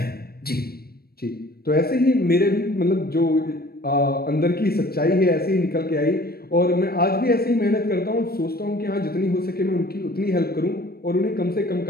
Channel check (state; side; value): late; right; 0.45 ms